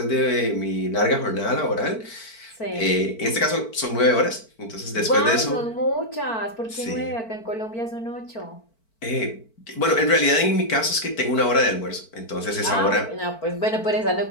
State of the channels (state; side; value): late; right; 4.5 ms